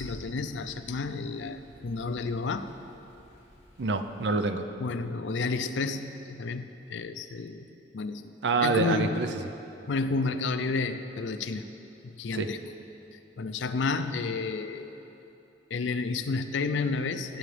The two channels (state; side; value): normal; both; correlation 0.33